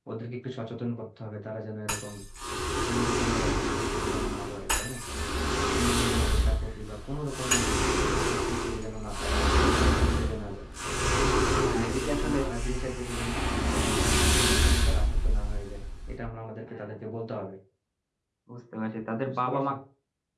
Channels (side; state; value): both; identical; correlation 1.00